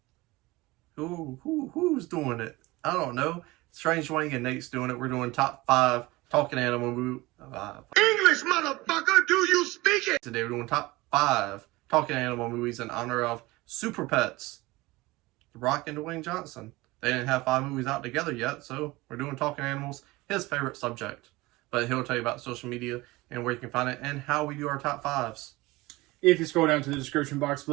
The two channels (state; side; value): quieter; left; 21.0 dB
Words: Who's doing it? I don't know. Strange Wang and Nate's doing it. We're doing top 5 talking animal movie. English, motherfucker, do you speak it? Today we're doing top 5 talking animal movies in honor of Super Pets, The Rock and Dwayne Johnson. They didn't have 5 movies out together yet, so we're doing talking animals, his favorite subject. But he'll tell you about social media and where you can find it and how we do our top 5s. If you scroll down to the description box